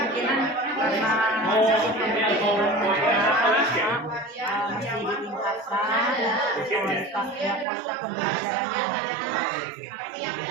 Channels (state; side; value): drops out; left; at 7.7 s